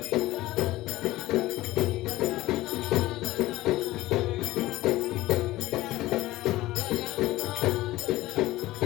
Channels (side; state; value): right; quieter; 17.3 dB